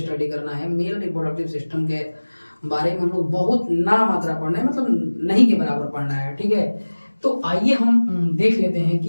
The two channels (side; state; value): both; inverted; correlation -1.00